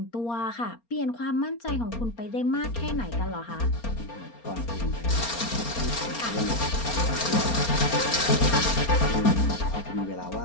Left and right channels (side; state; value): right; late; 4.3 ms